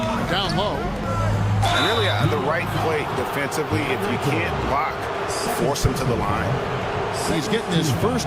Down low. And really the right play defensively. If you can't block, force him to the line. He's getting his first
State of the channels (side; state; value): both; identical; correlation 1.00